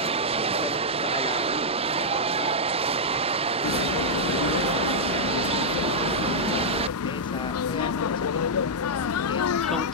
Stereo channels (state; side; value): normal; both; correlation -0.06